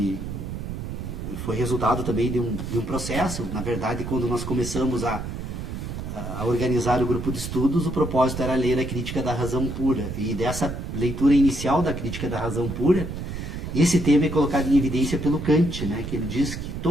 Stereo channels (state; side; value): noise; right; rumble, 6 dB below the sound